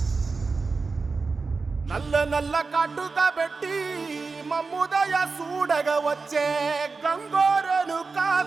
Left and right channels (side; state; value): left; quieter; 4.3 dB